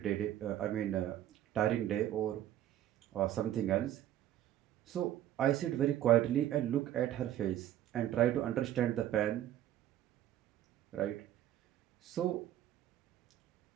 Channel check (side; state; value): left; quieter; 12.2 dB